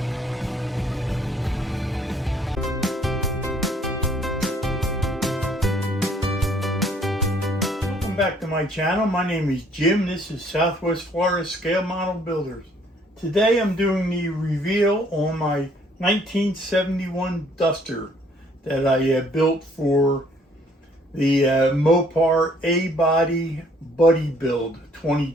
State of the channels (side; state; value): both; normal; correlation 0.62